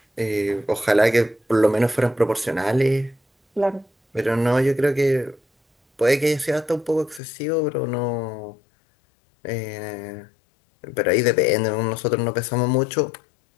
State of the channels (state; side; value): drops out; right; at 7.2 s